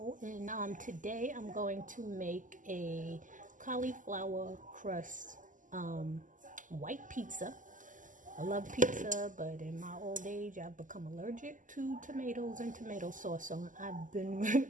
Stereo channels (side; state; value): left; late; 0.38 ms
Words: and today I'm going to make a cauliflower crust white pizza. I love pizza, but in my old age I've become allergic to tomatoes and tomato sauce, so I've been